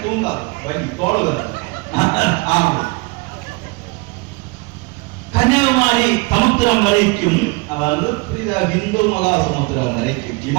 தூங்கா வலி தோளுகிற. கன்னியாகுமரி சமுத்திரம் வரைக்கும், அதாவது இந்து மகா சமுத்திரம் வரைக்கும்,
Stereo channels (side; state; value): left; quieter; 26.9 dB